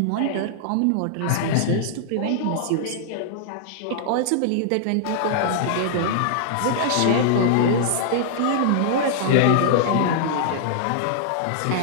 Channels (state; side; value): different; both; correlation -0.01